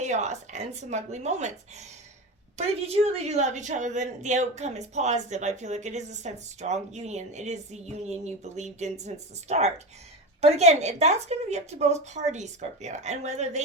and some ugly moments. But if you truly do love each other, then the outcome is positive. I feel like it is a sense of strong union. It is the union you believed in since the start. But again, that's going to be up to both parties, Scorpio, and whether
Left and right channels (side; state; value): both; normal; correlation 0.23